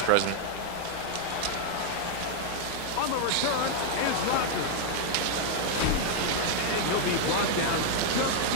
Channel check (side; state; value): both; different; correlation 0.00